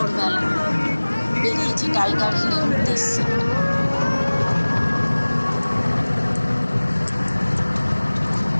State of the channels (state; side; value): inverted; both; correlation -1.00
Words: বেরিয়েছি টাইগার হিলের উদ্দেশ্যে।